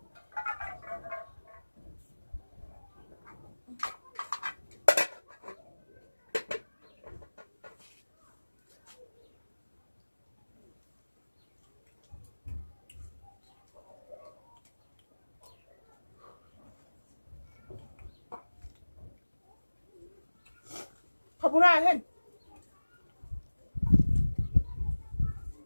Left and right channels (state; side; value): inverted; both; correlation -1.00